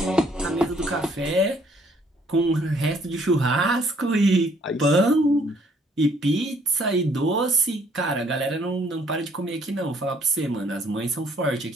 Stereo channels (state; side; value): normal; both; correlation 0.64